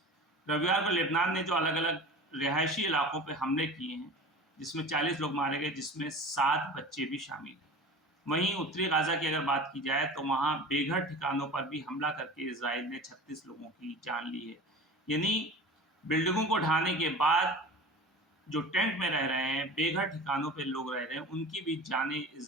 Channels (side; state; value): both; normal; correlation 0.35